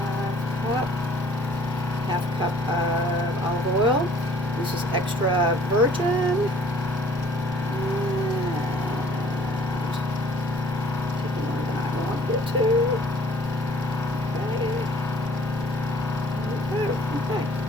Half cup of olive oil. This is extra virgin. Too. Okay. Okay.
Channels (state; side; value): normal; both; correlation 0.55